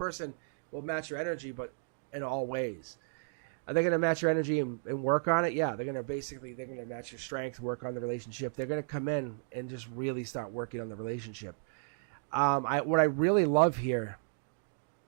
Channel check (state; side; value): silent; left; digital silence